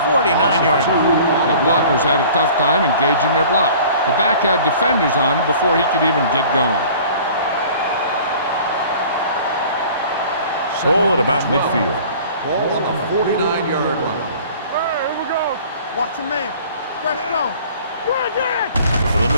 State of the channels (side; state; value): both; inverted; correlation -0.47